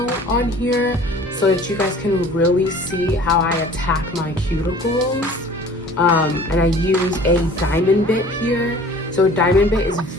on here so that you guys can really see how I attack my cuticles. And I use a diamond bit here. So a diamond bit is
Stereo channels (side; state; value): both; normal; correlation 0.47